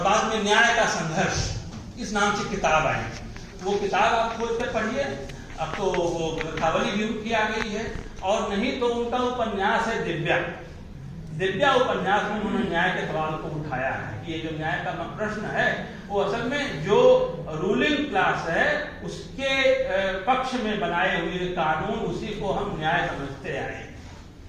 में न्याय का संघर्ष इस नाम से किताब आई। वो किताब आप खोल कर पढ़िए, अब तो वो ग्रंथावली भी उनकी आ गई है। और नहीं तो उनका उपन्यास है दिव्या उपन्यास में उन्होंने न्याय के सवाल को उठाया है कि ये जो न्याय का प्रश्न है वो असल में जो रूलिंग क्लास है उसके पक्ष में बनाए हुए कानून, उसी को हम न्याय समझते आए।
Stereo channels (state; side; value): identical; both; correlation 1.00